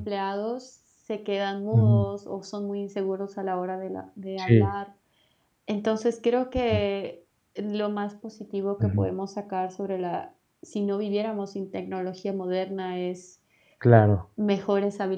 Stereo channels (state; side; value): identical; both; correlation 1.00